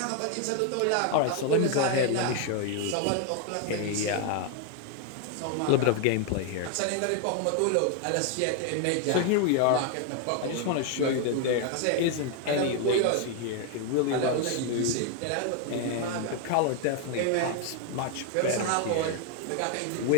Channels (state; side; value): different; both; correlation 0.01